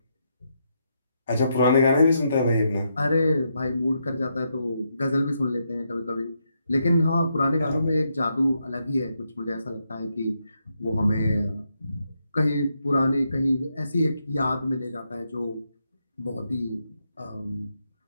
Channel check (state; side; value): inverted; both; correlation -0.81